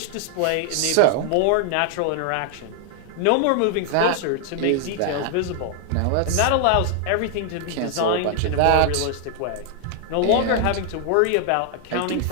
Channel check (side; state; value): both; different; correlation 0.00